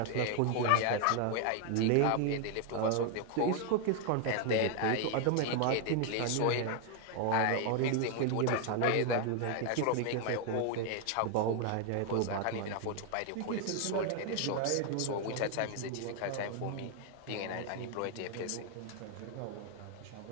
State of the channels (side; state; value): both; different; correlation 0.01